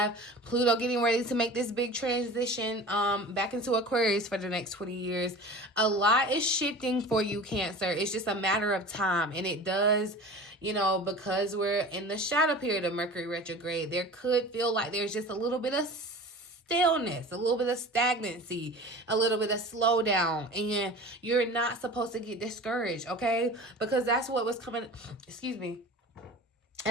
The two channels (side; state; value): both; normal; correlation 0.37